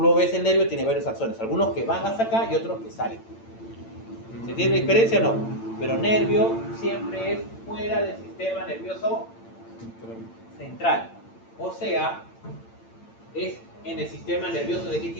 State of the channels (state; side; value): late; right; 8.8 ms